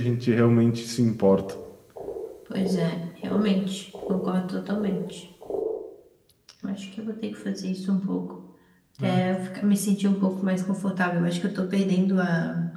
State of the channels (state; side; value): identical; both; correlation 1.00